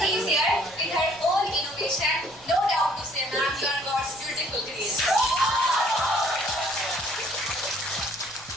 No doubt to say, ma'am, you are God's beautiful creation.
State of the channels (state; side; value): noise; right; rumble, 25 dB below the sound